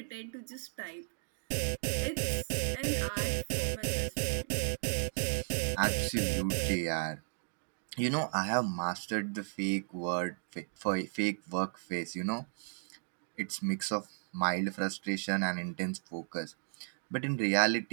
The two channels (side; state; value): left; silent; digital silence